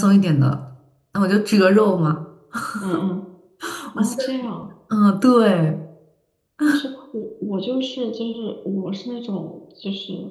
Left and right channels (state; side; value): identical; both; correlation 1.00